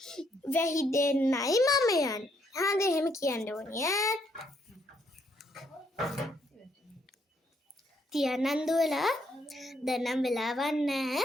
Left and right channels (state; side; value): normal; both; correlation 0.72